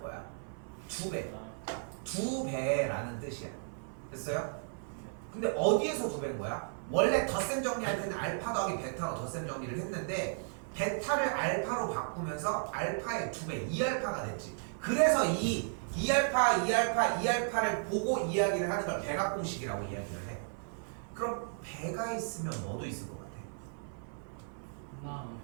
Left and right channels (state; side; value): silent; left; 55 dB below the other